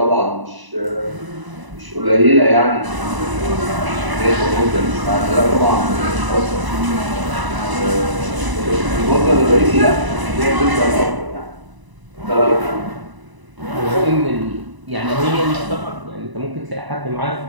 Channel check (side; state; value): left; late; 1.0 ms